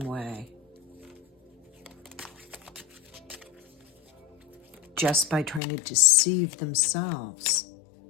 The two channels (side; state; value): right; drops out; at 5.6 s